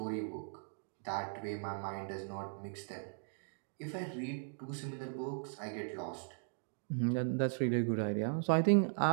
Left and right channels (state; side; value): silent; left; digital silence